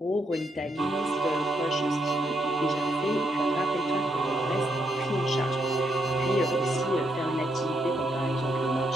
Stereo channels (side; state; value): both; normal; correlation 0.77